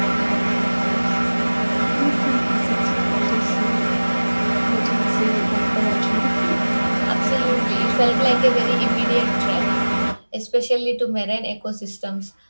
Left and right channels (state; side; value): inverted; both; correlation -1.00